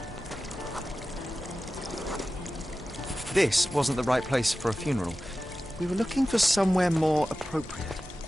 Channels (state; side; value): normal; both; correlation 0.94